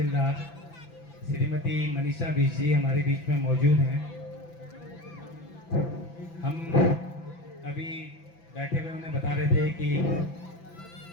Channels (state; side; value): late; right; 5.9 ms